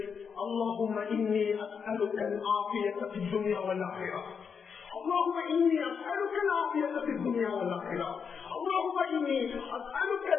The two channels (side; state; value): right; quieter; 6.3 dB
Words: அல்லாஹும்ம இன்னி அஸ்அலுக அல்-ஆஃபியத ஃபித் துன்யா வல் ஆখিরাহ, اللهم إني أسألك العافية في الدنيا والآخرة، اللهم إني أسألك